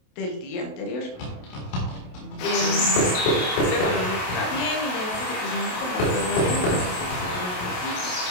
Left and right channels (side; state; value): right; late; 28 ms